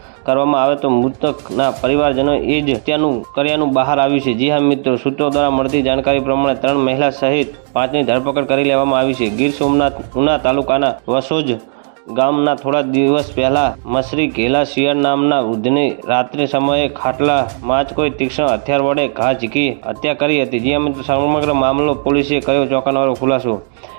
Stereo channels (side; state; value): left; silent; digital silence